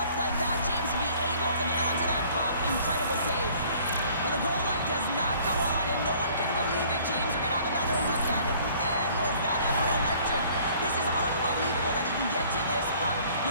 like that, James, to be able to get onto that puck. Incredible save. Well, the goal light does not go on, and no one can believe it, James. We're going to have another look at it. Man, was that ever electric. This is unbelievable that he can get to this puck.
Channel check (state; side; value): inverted; both; correlation -0.55